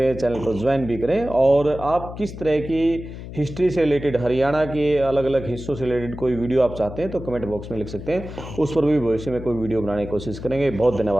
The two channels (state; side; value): noise; left; hum, 11 dB below the sound